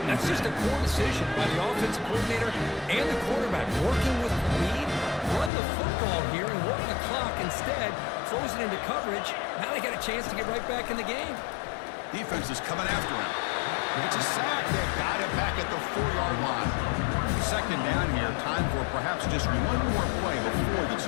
That's just a poor decision by the offensive coordinator and the quarterback. Working with lead, run the football here and work the clock instead. Throws it into coverage. Now they got a chance to get right back in the game. Defense is coming after him. It's a sack. They got it back at the 4-yard line. 2nd down here. Time for perhaps just one more play before the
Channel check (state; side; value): drops out; right; at 5.5 s